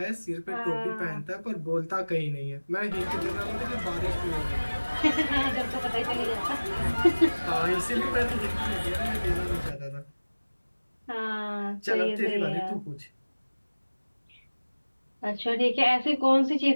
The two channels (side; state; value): both; inverted; correlation -1.00